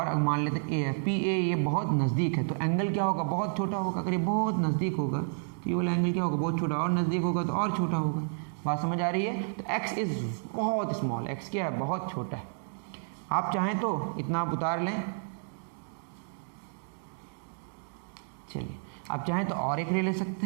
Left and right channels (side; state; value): left; silent; digital silence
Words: मान लेते हैं A है, PA ये बहुत नज़दीक है, तो एंगल क्या होगा, बहुत छोटा होगा। अगर ये बहुत नज़दीक होगा तो ये वाला एंगल क्या होगा, बहुत छोटा, और नज़दीक होगा तो और छोटा होगा। बात समझ आ रही है। तो x इज़ बहुत स्मॉल, x क्या है, बहुत छोटा है। आप चाहें तो इतना आप उतार लें, चलिए आप चाहें तो और एक रे ले सकते